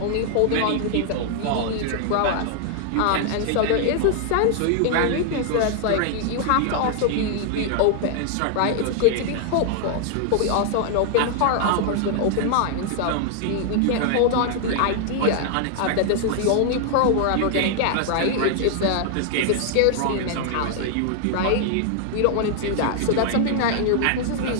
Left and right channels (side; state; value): both; different; correlation 0.00